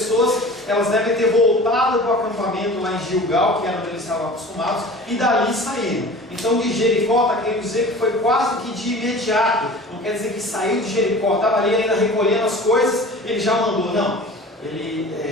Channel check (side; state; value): both; normal; correlation 0.41